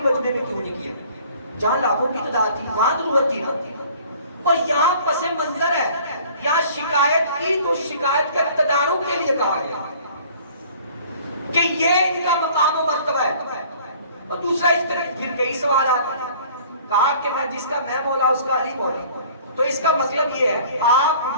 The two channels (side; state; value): both; inverted; correlation -0.51